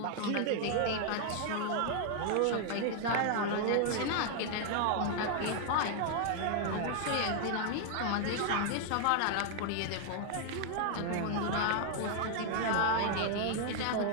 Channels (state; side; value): different; both; correlation 0.00